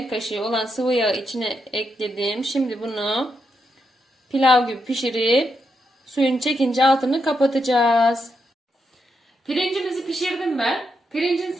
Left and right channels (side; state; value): both; normal; correlation 0.82